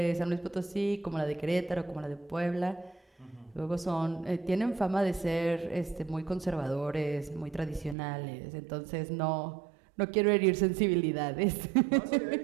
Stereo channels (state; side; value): drops out; left; at 8.0 s